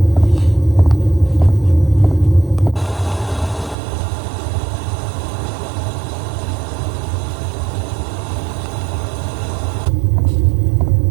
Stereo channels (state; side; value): drops out; left; at 3.8 s